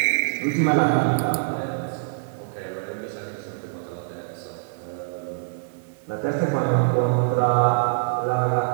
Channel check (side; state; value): left; silent; 56 dB below the other